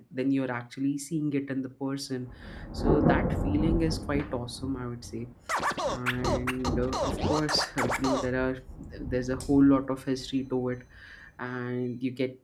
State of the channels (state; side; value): identical; both; correlation 1.00